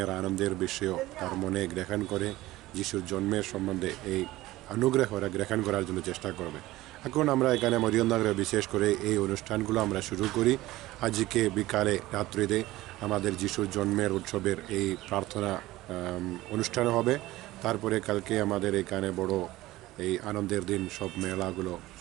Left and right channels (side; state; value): left; quieter; 17.5 dB